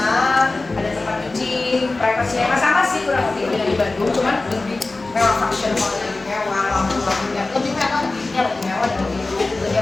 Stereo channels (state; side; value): quieter; right; 3.3 dB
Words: ada tempat cuci, privasinya sama sih kurang lebih dengan di Bandung, cuman lebih mewah, function hall lebih mewah, lampu-lampunya lebih mewah, lebih mewah dan